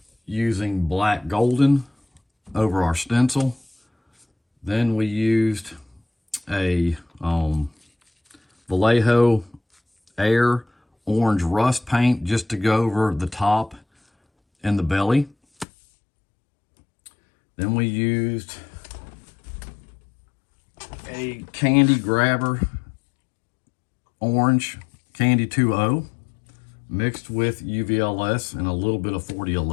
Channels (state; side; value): drops out; right; at 15.7 s